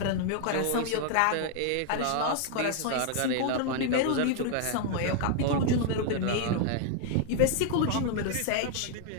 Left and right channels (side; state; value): both; different; correlation 0.00